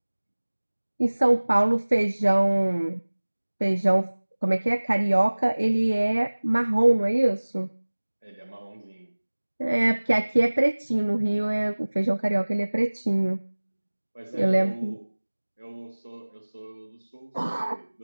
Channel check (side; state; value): both; inverted; correlation -1.00